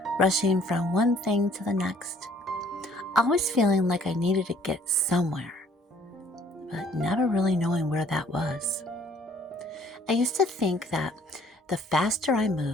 rushing from one thing to the next, always feeling like I needed to get somewhere, but never really knowing where that was. I used to think that the faster I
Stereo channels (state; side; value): normal; both; correlation 0.58